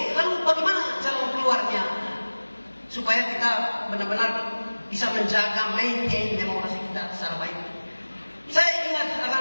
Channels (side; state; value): both; inverted; correlation -1.00